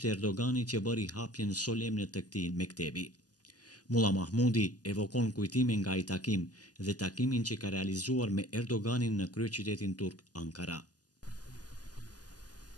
Erdogani që bëri hapjen solemne të këtij mektebi. Mulla Mahmudi evokon kujtime nga ai takim dhe takimin që ka realizuar me Erdoganin në kryeqytetin turk Ankara. Ka konë që këta,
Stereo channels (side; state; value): right; late; 0.68 ms